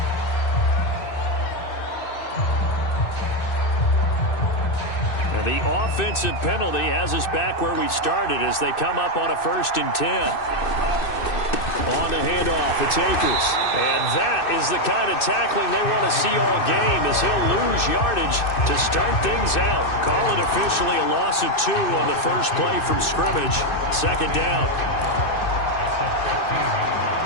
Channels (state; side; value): late; right; 2.6 ms